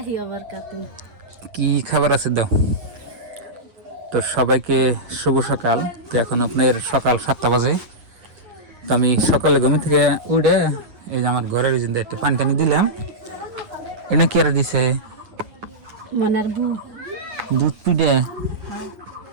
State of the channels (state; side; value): late; left; 9.0 ms